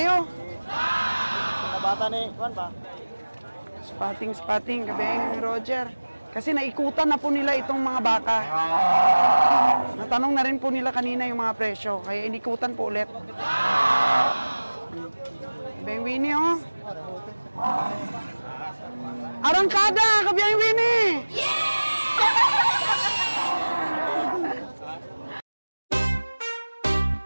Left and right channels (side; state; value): both; inverted; correlation -1.00